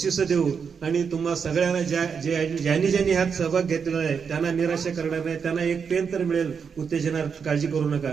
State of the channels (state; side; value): quieter; left; 6.3 dB